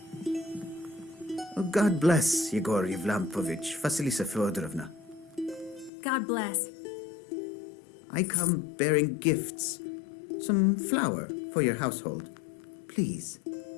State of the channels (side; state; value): right; drops out; at 5.9 s